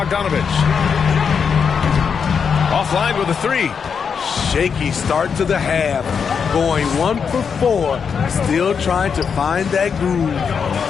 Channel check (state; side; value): quieter; right; 6.4 dB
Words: Offline with a 3. Shaky start to the half. Going 1 for 4. Still trying to find that groove.